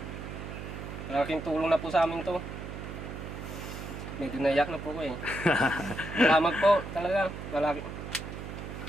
Malaking tulong na po sa amin to. Medyo naiyak na po ko eh. Salamat po talaga. Wala.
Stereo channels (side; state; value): right; noise; hum, 8 dB below the sound